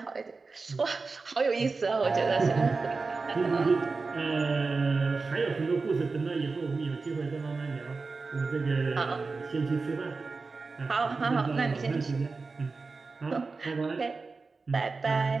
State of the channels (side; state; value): left; quieter; 4.1 dB